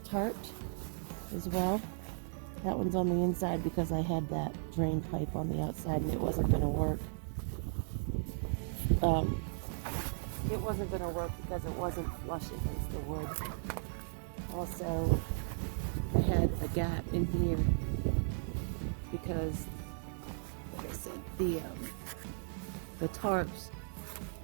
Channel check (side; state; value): left; silent; digital silence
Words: tarped as well. That one's on the inside because I had that drain pipe on the outside and it wasn't going to work. It wasn't going to work because it wasn't flush against the wood. Also, I had a gap in here because, like I said, the tarps